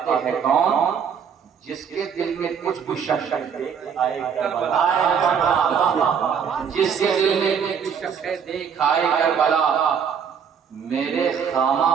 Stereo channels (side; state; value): left; quieter; 7.3 dB